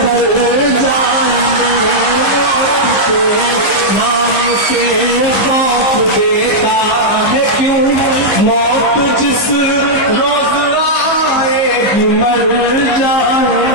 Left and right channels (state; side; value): late; right; 15 ms